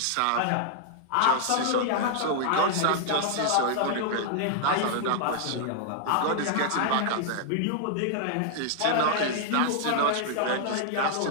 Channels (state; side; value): different; both; correlation -0.01